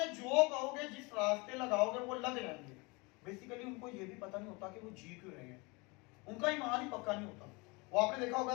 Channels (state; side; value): quieter; right; 27.2 dB